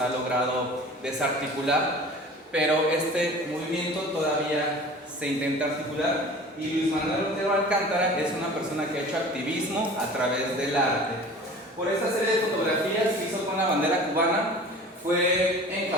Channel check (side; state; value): both; normal; correlation 0.42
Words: logrado desarticular, pero este movimiento todavía se intenta articular y Luis Manuel Otero Alcántara es una persona que ha hecho activismo a través del arte. Por esta serie de fotografías que hizo con la bandera cubana fue